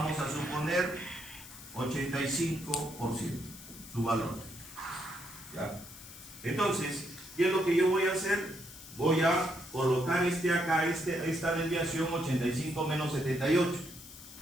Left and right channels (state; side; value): noise; left; hiss, 16 dB below the sound